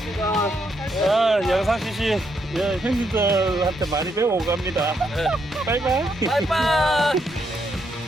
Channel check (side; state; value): both; normal; correlation 0.77